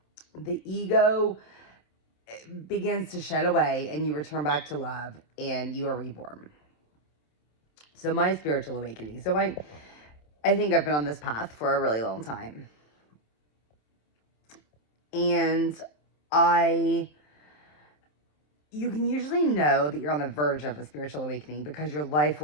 The ego begins to shed away and you return back to love and you are reborn. So my spiritual awakening. So I think I've been on this path for a really long time. And you can usually know that you're on the verge of a spiritual awakening because your life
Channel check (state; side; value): late; right; 27 ms